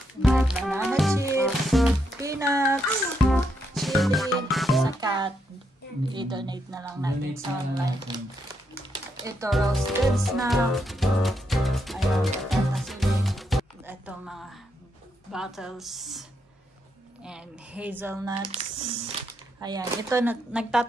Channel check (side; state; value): both; normal; correlation 0.80